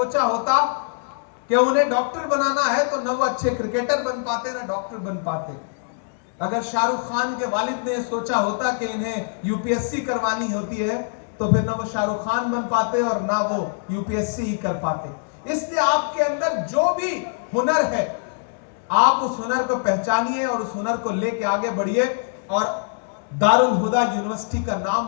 होता कि उन्हें डॉक्टर बनाना है, तो ना वो अच्छे क्रिकेटर बन पाते, ना डॉक्टर बन पाते। अगर शाहरुख खान के वालिद ने यह सोचा होता कि इन्हें UPSC करवानी होती है, तो फिर ना वो शाहरुख खान बन पाते और ना वो UPSC ही कर पाते। इसलिए आपके अंदर जो भी हुनर है, आप उस हुनर को पहचानिए और उस हुनर को लेके आगे बढ़िए और दारुल हुदा यूनिवर्सिटी का नाम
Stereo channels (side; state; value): right; silent; digital silence